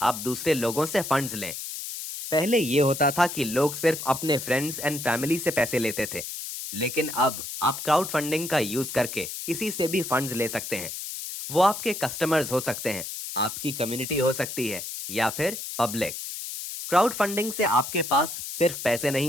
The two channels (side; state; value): left; noise; hiss, 7 dB below the sound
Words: आप दूसरे लोगों से फंड्स लें। पहले ये होता था कि लोग सिर्फ अपने फ्रेंड्स एंड फैमिली से पैसे लेते थे, लेकिन अब आप क्राउड फंडिंग का यूज करके किसी से भी फंड्स ले सकते हैं। वो आपके कस्टमर्स हो सकते हैं, आपकी कम्युनिटी हो सकती है, या फिर पब्लिक। क्राउड फंडिंग से आपके पास सिर्फ पैसे